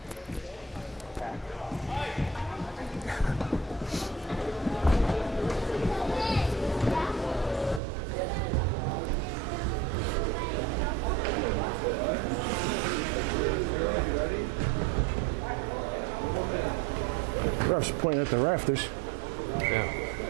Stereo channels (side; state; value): left; drops out; at 7.8 s